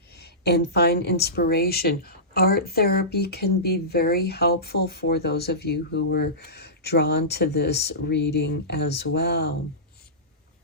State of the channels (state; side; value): normal; both; correlation -0.19